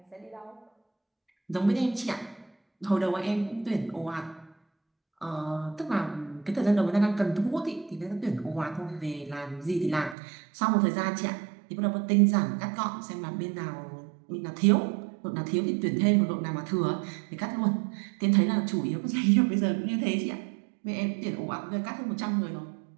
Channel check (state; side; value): drops out; left; at 10.2 s